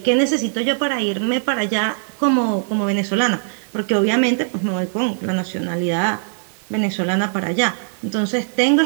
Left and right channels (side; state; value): left; silent; digital silence